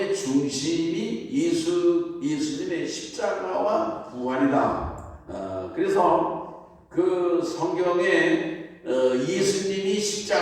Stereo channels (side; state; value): both; identical; correlation 1.00